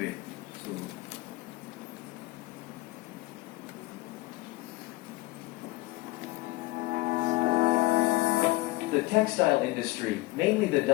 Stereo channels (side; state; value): right; quieter; 19.9 dB